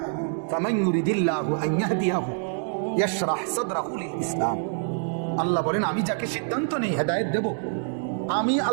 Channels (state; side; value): silent; left; digital silence